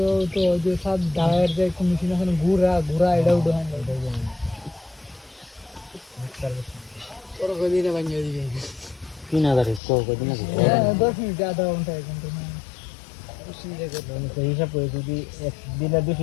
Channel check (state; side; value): drops out; right; at 9.8 s